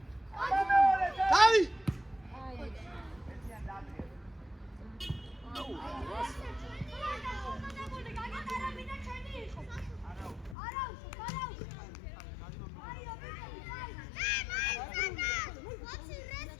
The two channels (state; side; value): drops out; right; at 10.6 s